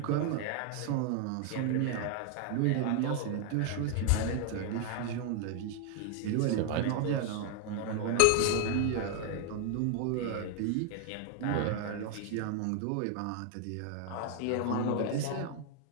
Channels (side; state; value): both; different; correlation 0.00